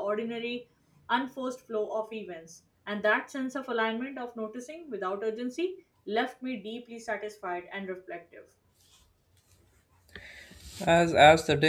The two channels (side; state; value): both; identical; correlation 1.00